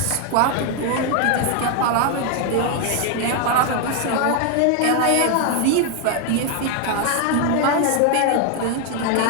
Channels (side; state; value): both; different; correlation 0.01